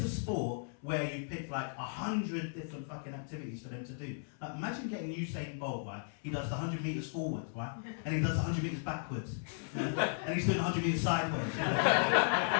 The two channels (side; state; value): right; silent; 54 dB below the other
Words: sport where you picked like 100 different fucking activities for them to do. Like, imagine getting Usain Bolt, right? He does the 100 metres forward, right? And he does the 100 metres backwards. You know? And he's doing 100 metres sideways. You know?